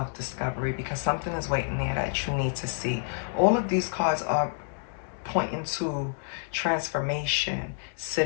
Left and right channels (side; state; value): right; silent; digital silence